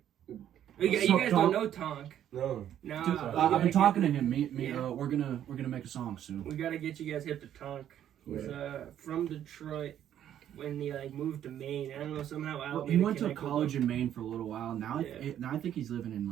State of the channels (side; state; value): left; quieter; 10.6 dB